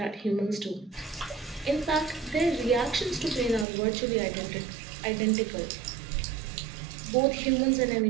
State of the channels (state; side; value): drops out; left; at 3.7 s